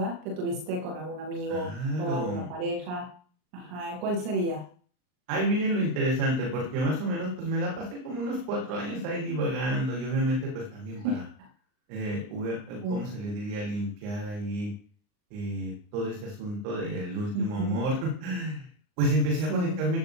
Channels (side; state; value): left; late; 39 ms